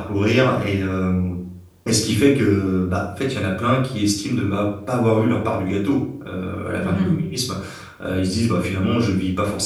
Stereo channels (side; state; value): both; identical; correlation 1.00